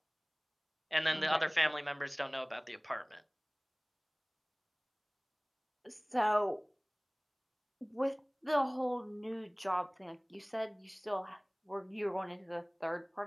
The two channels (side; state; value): both; identical; correlation 1.00